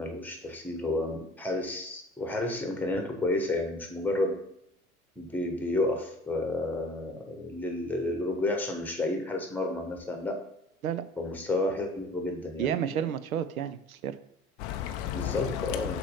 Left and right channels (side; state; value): both; normal; correlation 0.45